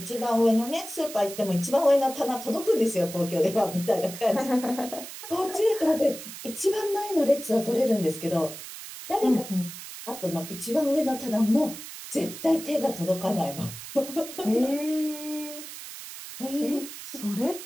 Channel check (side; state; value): right; noise; hiss, 12 dB below the sound